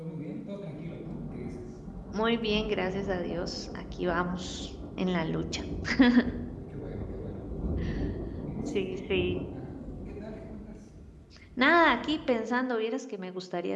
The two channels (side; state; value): both; identical; correlation 1.00